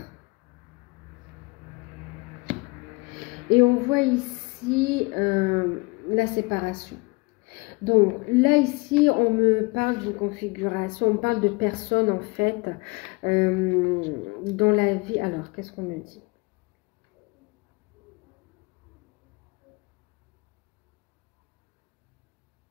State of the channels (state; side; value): quieter; right; 26.4 dB